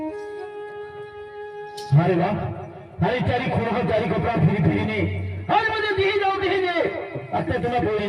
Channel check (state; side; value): identical; both; correlation 1.00